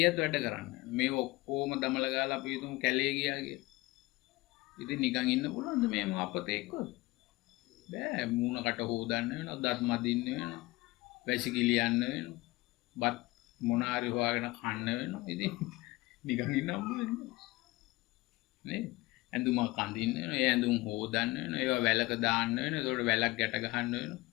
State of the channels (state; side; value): quieter; right; 20.9 dB